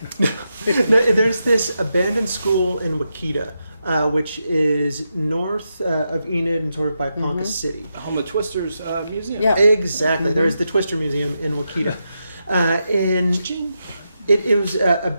No, there's this abandoned school in Wakita, which is north of Enid and sort of by Ponca City. The home of Twister's museum. Yeah. Exactly. There's the Twister Museum in Wakita. And it was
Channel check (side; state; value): both; inverted; correlation -0.85